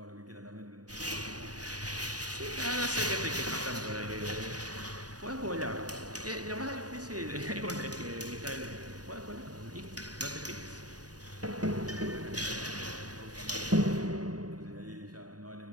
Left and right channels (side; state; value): left; late; 0.68 ms